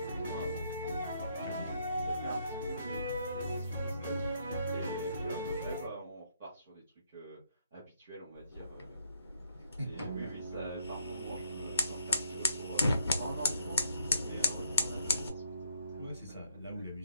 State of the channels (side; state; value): both; inverted; correlation -0.70